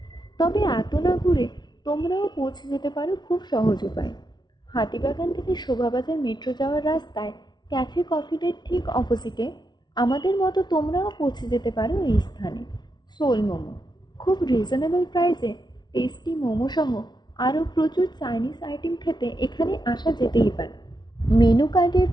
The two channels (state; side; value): late; right; 0.20 ms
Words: তবে এত না ঘুরে তোমরাও পৌঁছে যেতে পারো খুব সহজ উপায়। হাতিবাগান থেকে শোভাবাজার মেট্রো যাওয়ার রাস্তায় ক্যাফে কফি ডের ঠিক অপোজিটে আমাদের মতো তোমরাও পৌঁছে যেতে পারো এই স্থানে। সোল মোমো, খুব রিজনেবল প্রাইসে টেস্টি মোমো সহ আরও প্রচুর চাইনিজ আইটেম খেতে এখানে আসা যেতেই পারে। মেনু কার্ডের